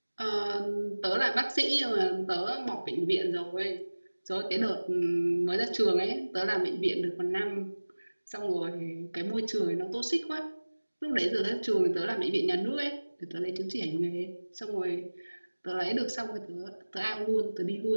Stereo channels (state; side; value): inverted; both; correlation -1.00